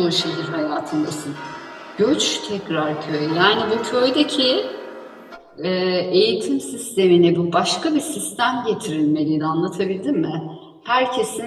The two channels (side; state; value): both; identical; correlation 1.00